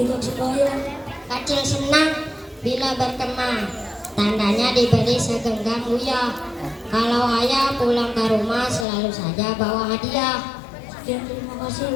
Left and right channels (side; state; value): right; drops out; at 8.8 s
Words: sebayang. Kecil senang bila berkembang, tandanya diberi segenggam uyah. Kalau ayah pulang ke rumah selalu saja bawa hadiah. Sekian, terima kasih.